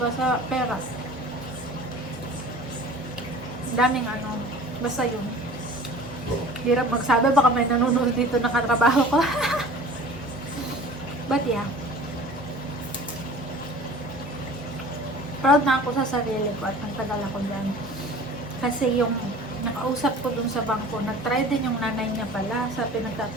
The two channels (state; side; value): normal; both; correlation 0.43